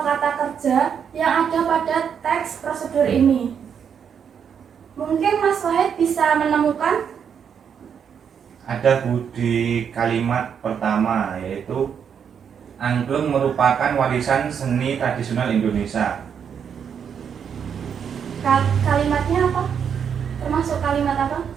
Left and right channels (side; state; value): left; quieter; 7.5 dB